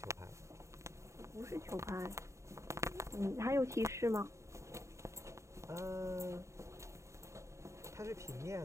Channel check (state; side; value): late; left; 0.14 ms